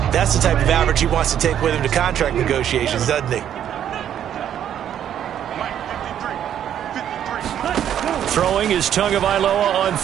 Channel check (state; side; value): quieter; left; 10.1 dB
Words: that's the type of average he wants to take with him to contract negotiations, doesn't he? Throwing is Tagovailoa on